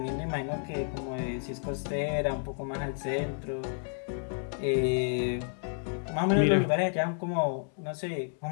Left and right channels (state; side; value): silent; right; 57 dB below the other